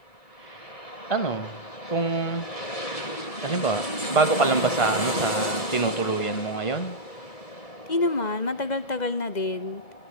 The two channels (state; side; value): late; right; 1.7 ms